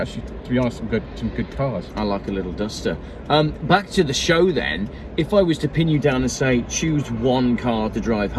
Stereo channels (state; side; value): identical; both; correlation 1.00